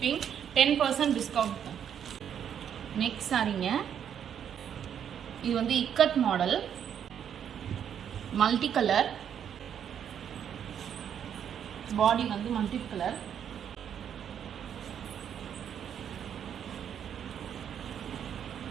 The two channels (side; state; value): left; quieter; 8.8 dB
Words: 10% discount. Next சாரிங்க. இது வந்து இக்கட் மாடல், மல்டி கலர். பாடி வந்து மல்டி கலர்.